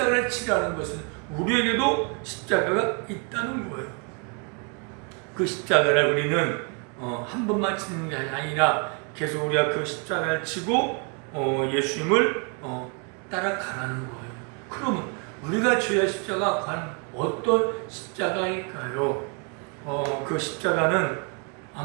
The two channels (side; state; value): left; quieter; 35.6 dB